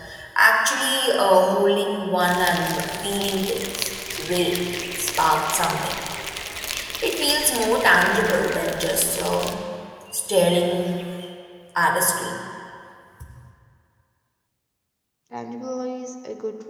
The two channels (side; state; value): both; identical; correlation 1.00